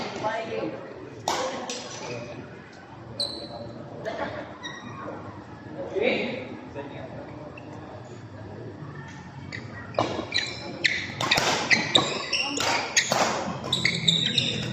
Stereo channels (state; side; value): identical; both; correlation 1.00